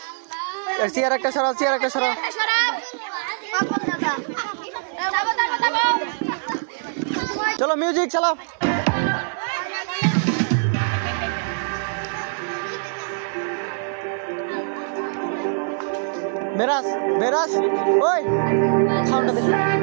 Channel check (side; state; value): left; silent; 63 dB below the other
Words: চেয়ার একটা সরাও, চেয়ার একটা সরাও। চলো মিউজিক চালাও। মেরাজ, মেরাজ, ওই সাউন্ডটা দে।